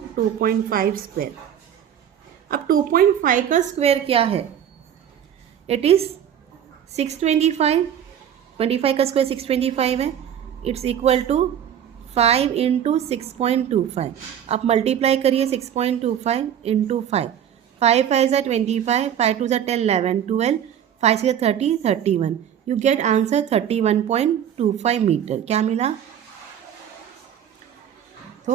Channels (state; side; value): quieter; left; 9.5 dB